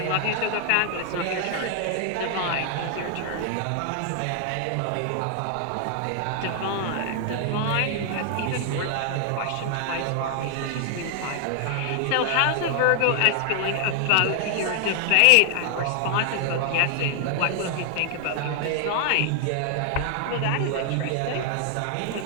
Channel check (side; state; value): both; different; correlation 0.00